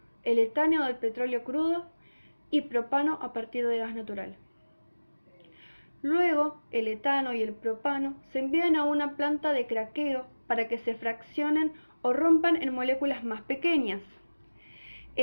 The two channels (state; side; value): inverted; both; correlation -1.00